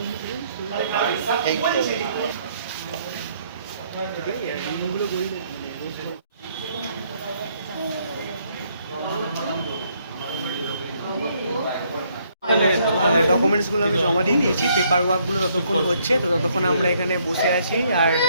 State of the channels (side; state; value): both; inverted; correlation -0.69